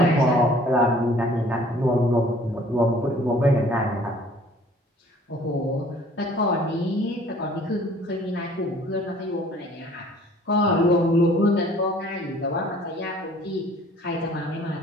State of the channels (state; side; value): normal; both; correlation 0.54